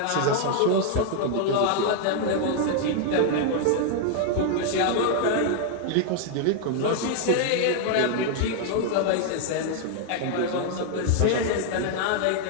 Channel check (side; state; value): both; different; correlation 0.00